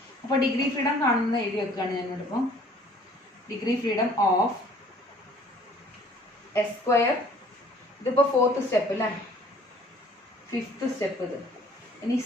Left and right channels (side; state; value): both; normal; correlation 0.55